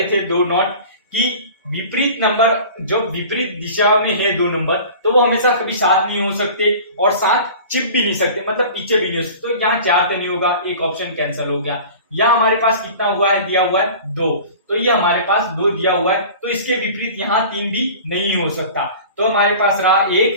थे 2 नोट कि विपरीत नंबर जो विपरीत दिशा में है 2 नंबर, तो वो हमेशा कभी साथ नहीं हो सकते और साथ चिप भी नहीं सकते, मतलब पीछे भी नहीं हो सकते। तो यहाँ 4 तो नहीं होगा, एक ऑप्शन कैंसिल हो गया। यहाँ हमारे पास कितना हुआ है, दिया हुआ है 2, तो ये हमारे पास 2 दिया हुआ है, तो इसके विपरीत यहाँ 3 भी नहीं हो सकता। तो हमारे पास रहा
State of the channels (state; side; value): inverted; both; correlation -0.40